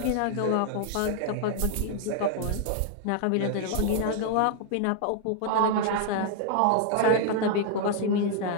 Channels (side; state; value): both; different; correlation 0.00